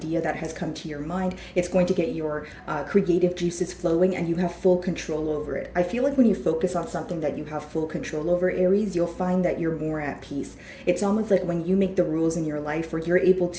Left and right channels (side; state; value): both; identical; correlation 1.00